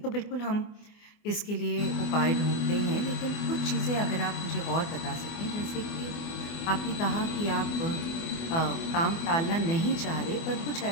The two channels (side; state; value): right; late; 24 ms